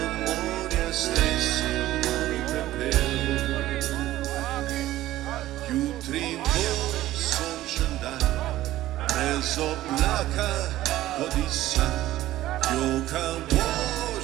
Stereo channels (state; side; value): quieter; left; 15.0 dB